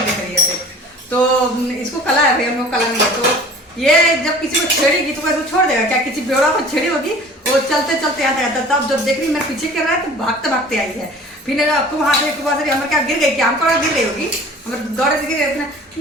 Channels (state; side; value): normal; both; correlation 0.45